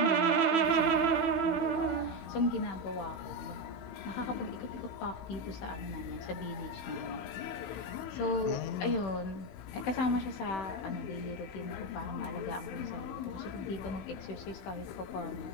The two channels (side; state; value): right; late; 16 ms